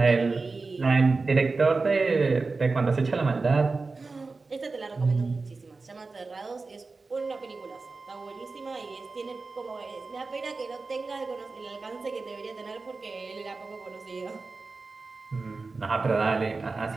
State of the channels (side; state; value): left; quieter; 3.9 dB